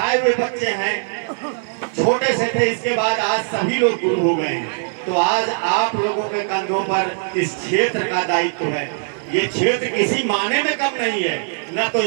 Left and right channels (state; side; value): silent; left; 61 dB below the other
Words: हुए बच्चे हैं, छोटे से थे, इसके बाद आज सभी लोग गुरु हो गए हैं। तो आज आप लोगों के कंधों पर इस क्षेत्र का दायित्व है। ये क्षेत्र किसी माने में कम नहीं है, न तो